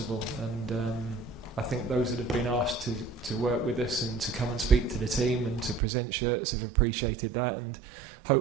and I think those that have been asked to work with us and to come and speak to the team and to present shirts have appreciated that, and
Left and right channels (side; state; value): left; drops out; at 5.8 s